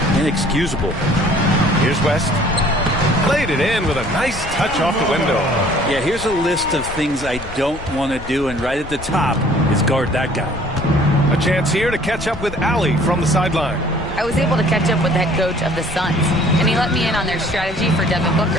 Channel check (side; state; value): left; noise; rumble, 13 dB below the sound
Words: Inexcusable. Here's West. Played it in with a nice touch off the window. Yeah, here's a list of things I don't want to do, and right at the top is guard that guy. A chance here to catch up with Allie from the sideline. I was able to catch up with the head coach of the Suns, and he let me in on their strategy for Devin